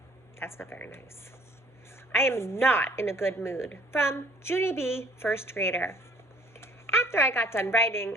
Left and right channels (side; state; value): both; normal; correlation 0.56